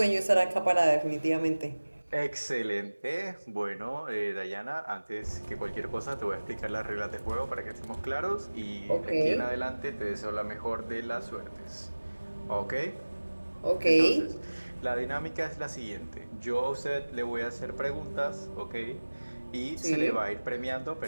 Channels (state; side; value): inverted; both; correlation -1.00